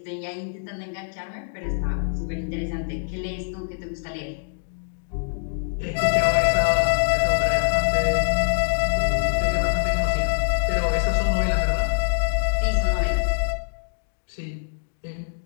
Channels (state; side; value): silent; right; digital silence